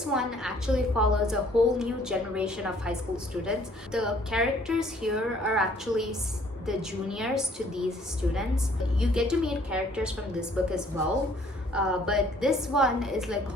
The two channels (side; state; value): both; normal; correlation 0.59